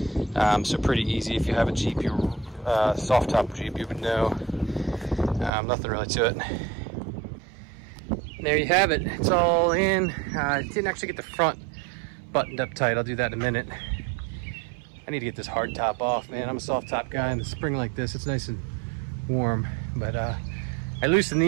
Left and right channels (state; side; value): drops out; left; at 5.5 s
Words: So pretty easy. If you have a Jeep, your soft top Jeep, you would know. Nothing really to it. There you have it. It's all in. Didn't actually get the front buttoned up tight. I'll do that in a minute. I need to get this hard top off, man. I'm a soft top guy. In the spring like this, it's nice and warm. But I loosened